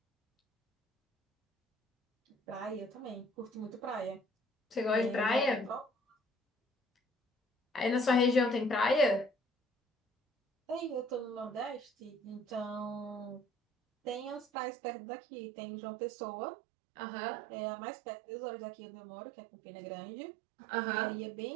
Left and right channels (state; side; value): drops out; left; at 14.5 s